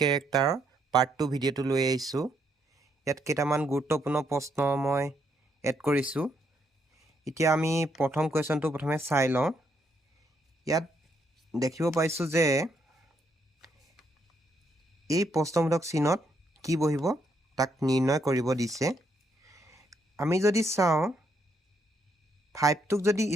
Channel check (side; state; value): both; normal; correlation 0.75